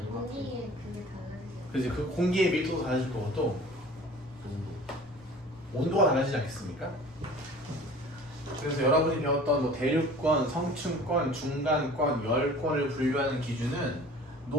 공기의 그게 달라지죠. 그래서 그 공기의 밀도도 달라질 거고 또 온도가 달라지지 않겠습니까? 그래서 여러분이 배웠던 뭐 대륙권, 성층권, 중간권, 열권을 분류하는 기준은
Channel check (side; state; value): both; normal; correlation 0.45